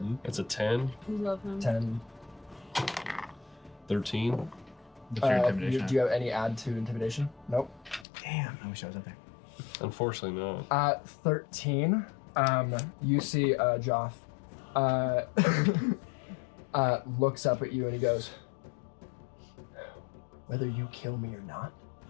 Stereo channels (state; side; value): drops out; right; at 8.1 s